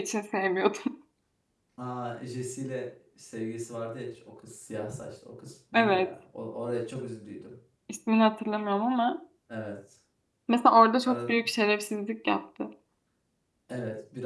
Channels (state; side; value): identical; both; correlation 1.00